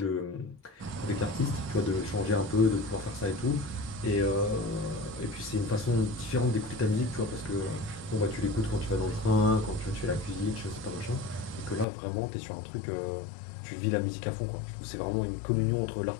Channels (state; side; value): drops out; right; at 11.9 s